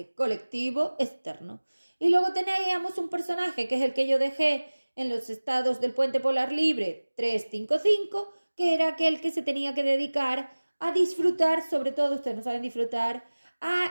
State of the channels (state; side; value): inverted; both; correlation -1.00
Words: colectivo externo. Y luego teníamos un personaje, que es el que yo dejé en los estados del puente polar libre 355, que era aquel que se tenía que dedicar a disfrutar, sobre todo ustedes no saben disfrutar,